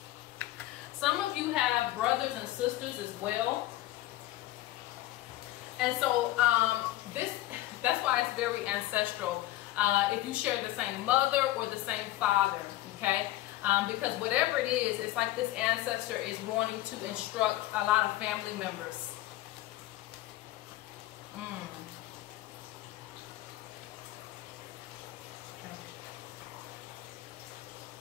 Some of you have brothers and sisters as well. And so that's why it's very ancestral. If you share the same mother or the same father, okay? Because whatever it is, it's like this ancestor is wanting to instruct a lot of family members.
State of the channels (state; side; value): quieter; right; 16.0 dB